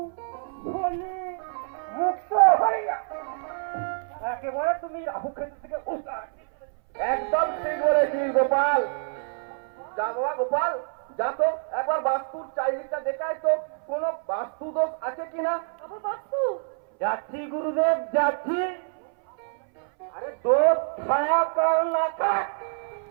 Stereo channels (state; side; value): silent; left; 60 dB below the other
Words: শনি মুক্ত হইয়া একেবারে তুমি রাহু কেতু থেকে একদম ঠিক বলেছিস গোপাল। যা বাবা গোপাল, যা তো একবার বাস্তুর চারিদিকটা দেখায় তো কোনো বাস্তু দোষ আছে কিনা। বাস্তু যাচ্ছি গুরুদেব, যাচ্ছি। আরে দোষ ছায়া কাল না থাক,